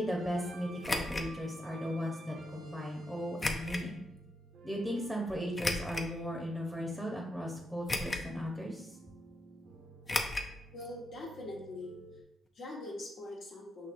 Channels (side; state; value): both; normal; correlation 0.84